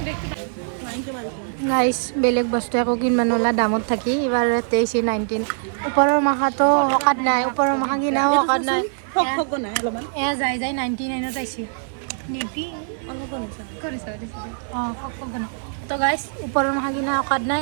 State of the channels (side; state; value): left; silent; digital silence